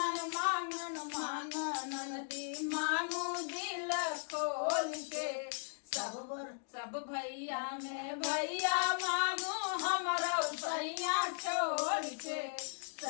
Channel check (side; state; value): right; silent; digital silence